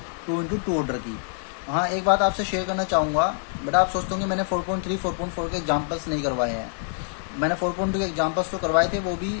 2 into 2 ऑर्डर की। हाँ एक बात आपसे शेयर करना चाहूँगा बेटा, आप सोचते होंगे मैंने 4.3 4.4 के एग्जाम्पल्स नहीं करवाए हैं। मैंने 4.2 के एग्जाम्पल्स तो करवाए थे, वो भी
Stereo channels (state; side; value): silent; right; digital silence